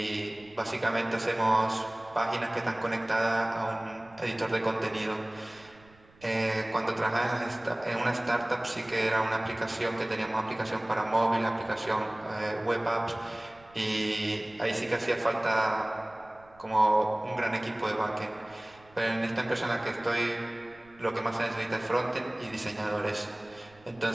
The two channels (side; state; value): right; noise; rumble, 27 dB below the sound